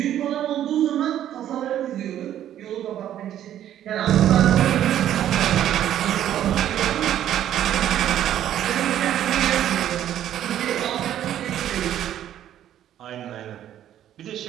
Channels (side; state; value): left; quieter; 11.3 dB